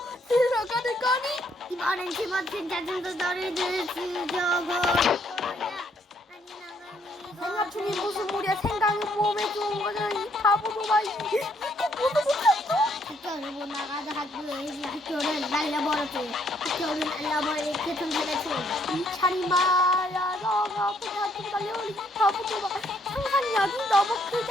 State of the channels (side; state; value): both; normal; correlation 0.69